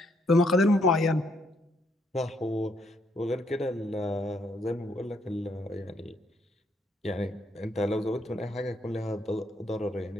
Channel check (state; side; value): normal; both; correlation 0.71